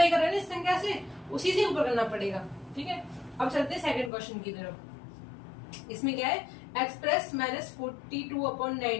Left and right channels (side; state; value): right; drops out; at 4.1 s